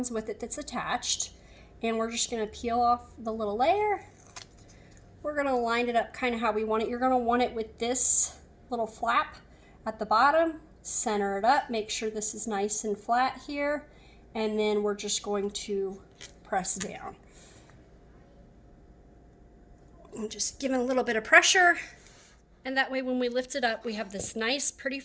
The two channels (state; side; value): identical; both; correlation 1.00